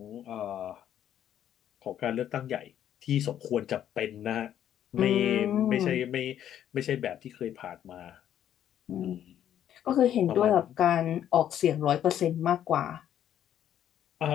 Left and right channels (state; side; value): quieter; right; 10.5 dB